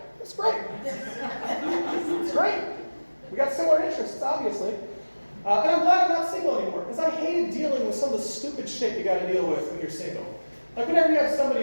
It's great. It's great. We got similar interests, obviously. And I'm glad I'm not single anymore, because I hated dealing with some of the stupid shit you got to deal with when you're single. Like whenever you have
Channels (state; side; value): inverted; both; correlation -1.00